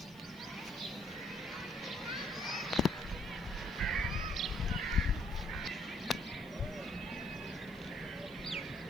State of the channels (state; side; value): noise; right; hiss, 25 dB below the sound